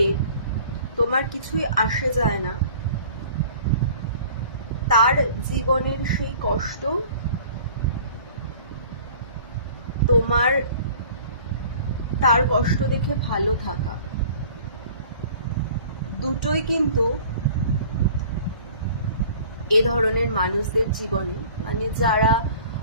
তোমার কিছুই আসে যায় না, তার জীবনের সেই কষ্ট তোমার তার কষ্ট দেখে ভালো থাকা, দুটোই কিন্তু এ ধরনের মানুষদের জীবনে, মানে যারা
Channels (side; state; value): both; inverted; correlation -0.48